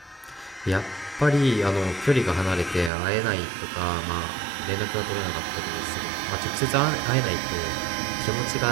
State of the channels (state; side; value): drops out; left; at 2.9 s